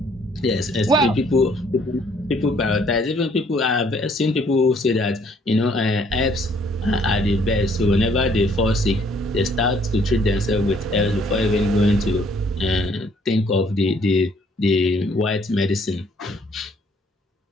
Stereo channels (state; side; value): normal; both; correlation 0.63